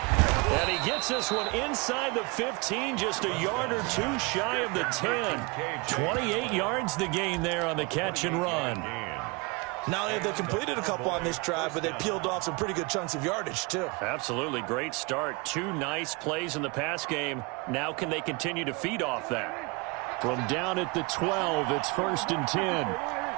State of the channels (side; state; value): left; quieter; 28.4 dB